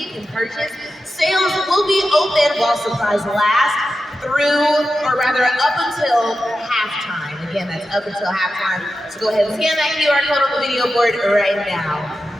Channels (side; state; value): both; normal; correlation 0.91